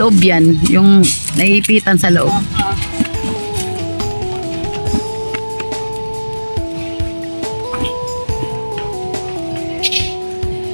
yan, yung naiipitan sa loob.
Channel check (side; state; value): both; inverted; correlation -1.00